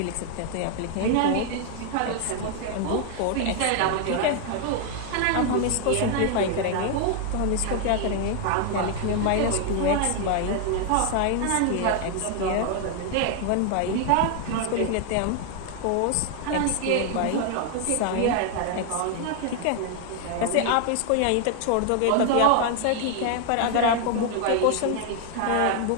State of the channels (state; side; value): different; both; correlation 0.00